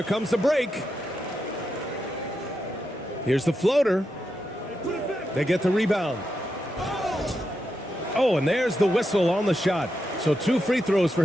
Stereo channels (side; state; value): both; normal; correlation 0.86